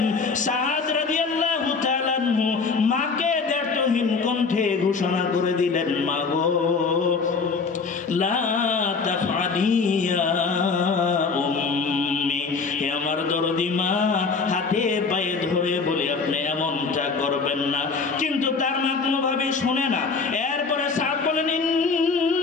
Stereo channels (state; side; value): quieter; right; 4.8 dB